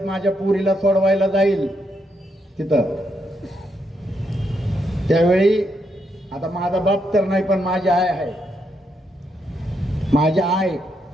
माझ्या पुरीला सोडवायला जाईल तिथं, त्यावेळी आता माझा बाप तर नाही, पण माझी आई आहे. माझ्या आई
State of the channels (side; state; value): both; normal; correlation 0.79